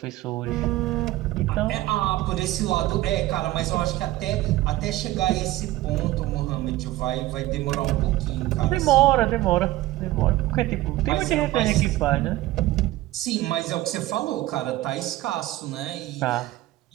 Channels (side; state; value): left; quieter; 16.5 dB